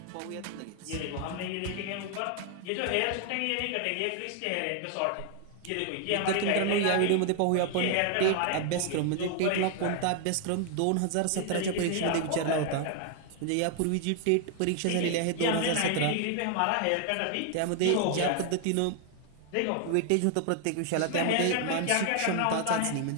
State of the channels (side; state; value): both; different; correlation 0.00